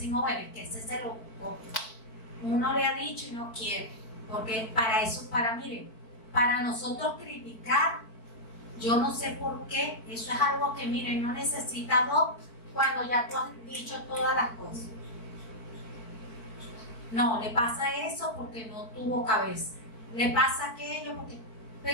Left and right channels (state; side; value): late; right; 4.5 ms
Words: bueno, es que ese se lo ocupó. Uno le ha dicho y no quiere, porque para eso, miren, para nosotros criticar, yo no sé por qué, eso es algo que, miren, no necesita dos cuando ya tú has dicho todas las cosas. No, le pasa eso porque no tuvo cabeza, le pasa aquello porque,